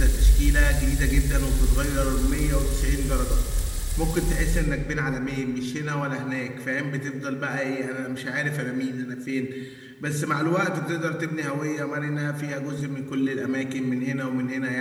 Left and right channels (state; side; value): identical; both; correlation 1.00